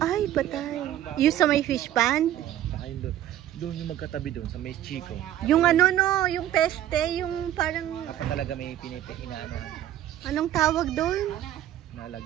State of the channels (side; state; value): left; quieter; 12.3 dB